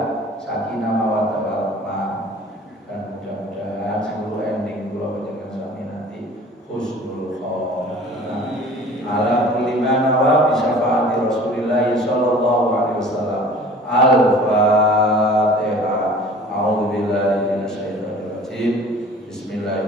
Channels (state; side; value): normal; both; correlation 0.46